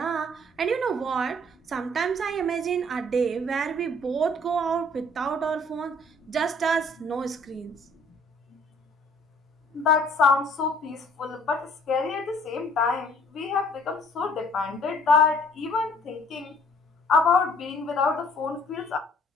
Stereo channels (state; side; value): normal; both; correlation 0.58